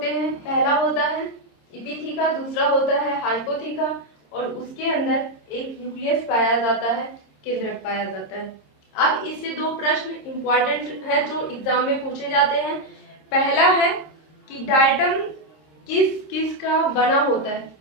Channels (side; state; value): right; late; 26 ms